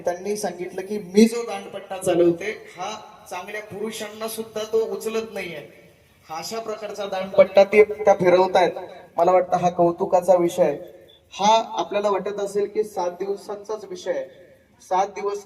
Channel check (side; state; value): both; identical; correlation 1.00